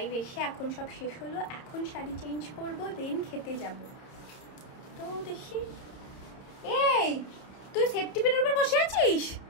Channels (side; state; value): right; late; 30 ms